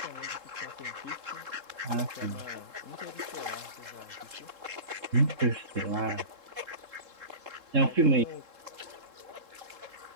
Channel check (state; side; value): late; left; 3.7 ms